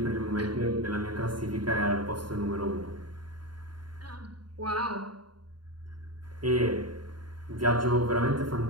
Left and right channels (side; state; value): left; late; 0.71 ms